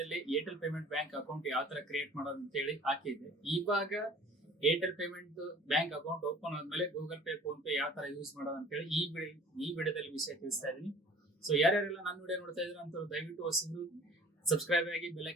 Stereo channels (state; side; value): normal; both; correlation 0.48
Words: ಏರ್ಟೆಲ್ ಪೇಮೆಂಟ್ ಬ್ಯಾಂಕ್ ಅಕೌಂಟ್ ಯಾವ ತರ ಕ್ರಿಯೇಟ್ ಮಾಡೋದು ಅಂತ ಹೇಳಿ ಹಾಕಿದ್ದೆ. ಇವಾಗ Airtel payment bank account open ಆದ್ಮೇಲೆ ಗೂಗಲ್ ಪೇ, ಫೋನ್ ಪೇ ಯಾವ ತರ ಯೂಸ್ ಮಾಡೋದು ಅಂತ ಹೇಳಿ ಈ ವಿಡಿಯೋದಲ್ಲಿ ವಿಷಯ ತಿಳಿಸ್ತಾ ಇದೀನಿ. ಸೊ ಯಾರ್ಯಾರೆಲ್ಲ ನನ್ನ ವಿಡಿಯೋ ನೋಡ್ತಾ ಇದ್ರು ಅಂತ ದಯವಿಟ್ಟು ಹೊಸಬ್ರು ಸಬ್ಸ್ಕ್ರೈಬ್ ಆಗಿ ಬೆಲ್